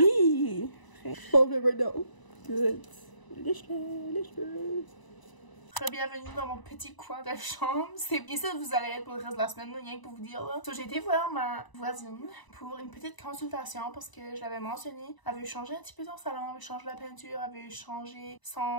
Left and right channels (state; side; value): late; right; 1.0 ms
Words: Bon, never know. Good. Lèche-le. Bienvenue dans mon petit coin de chambre. C'est bien ça que vous allez être pour le reste de la semaine, rien que pour vous dire là. So, j'ai été voir ma voisine pour une petite consultation parce que je l'avais mentionné. Elle veut changer un petit peu son salon, elle veut changer la peinture, elle veut changer